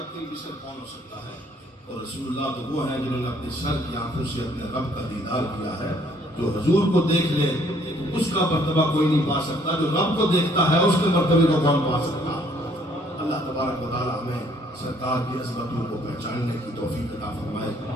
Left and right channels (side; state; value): both; normal; correlation 0.63